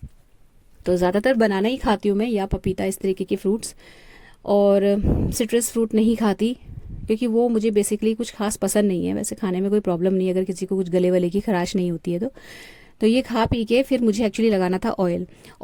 तो ज़्यादातर बनाना ही खाती हूँ मैं, या पपीता, इस तरीके के फ्रूट्स। और सिट्रस फ्रूट नहीं खाती, क्योंकि वो मुझे बेसिकली कुछ खास पसंद नहीं है। वैसे खाने में कोई प्रॉब्लम नहीं है अगर किसी को कुछ गले वले की खराश नहीं होती है तो ये खा पी के फिर मुझे एक्चुअली लगाना था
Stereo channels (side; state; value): both; identical; correlation 1.00